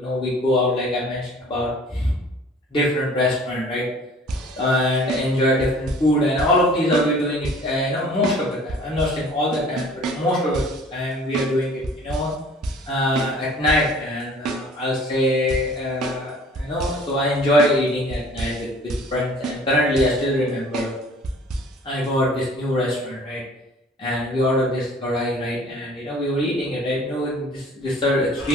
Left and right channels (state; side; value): normal; both; correlation 0.50